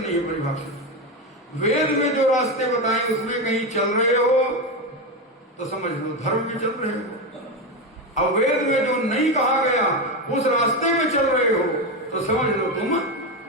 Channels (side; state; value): both; normal; correlation 0.14